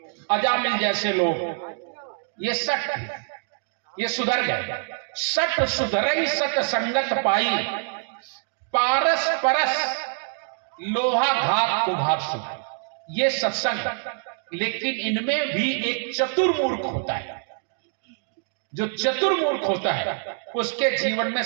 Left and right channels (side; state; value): left; silent; digital silence